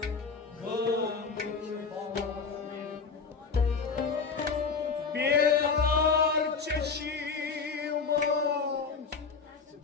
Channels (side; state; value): right; quieter; 5.1 dB